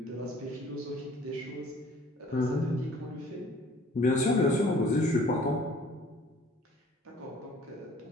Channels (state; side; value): normal; both; correlation 0.54